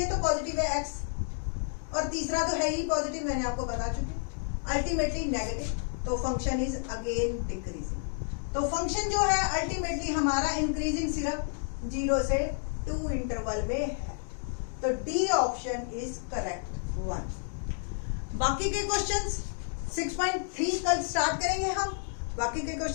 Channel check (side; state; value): right; silent; digital silence